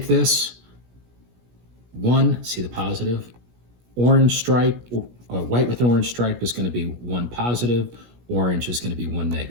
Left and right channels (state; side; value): late; left; 17 ms